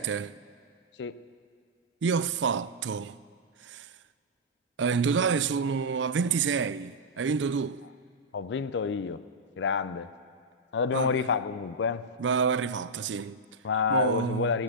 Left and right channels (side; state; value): both; normal; correlation -0.06